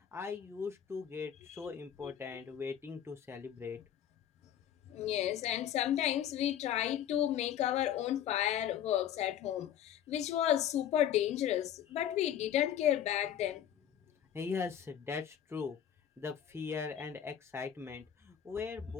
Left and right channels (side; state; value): right; quieter; 10.0 dB